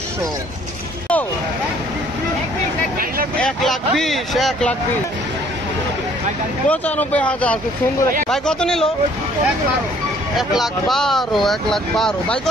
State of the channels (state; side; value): normal; both; correlation 0.59